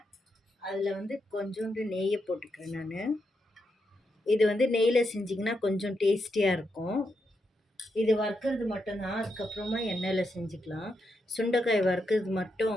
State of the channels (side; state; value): both; normal; correlation 0.83